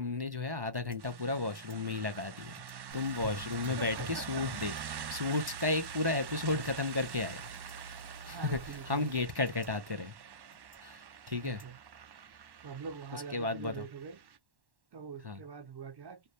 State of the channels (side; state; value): left; late; 1.1 ms